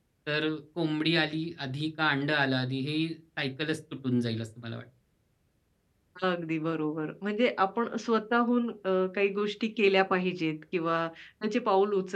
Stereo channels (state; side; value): identical; both; correlation 1.00